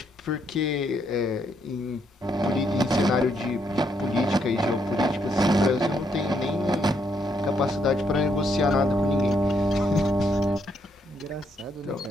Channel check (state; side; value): normal; both; correlation 0.75